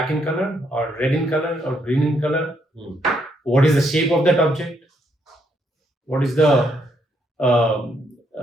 in color or red in color or green in color, what is the shape of that object, what is the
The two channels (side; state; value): both; normal; correlation 0.74